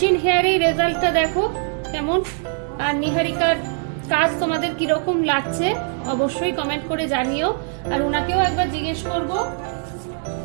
হেয়ারের রেজাল্টটা দেখো কেমন। আর নিহারিকার কাজ তোমাদের কিরকম লাগছে অবশ্যই কমেন্ট করে জানিও। আর ওনাকেও একবার জিজ্ঞেস করবো,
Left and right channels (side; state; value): left; silent; 61 dB below the other